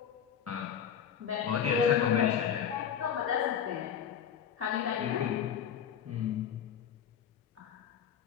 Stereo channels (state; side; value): quieter; right; 8.5 dB